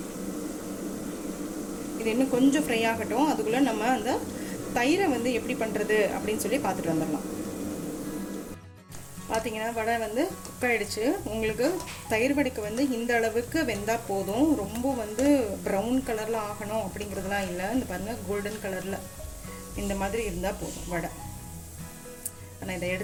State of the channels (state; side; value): identical; both; correlation 1.00